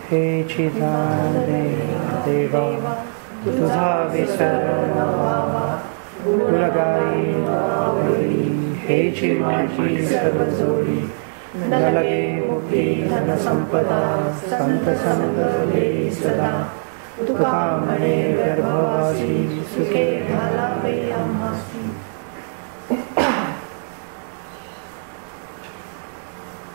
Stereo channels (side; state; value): left; silent; digital silence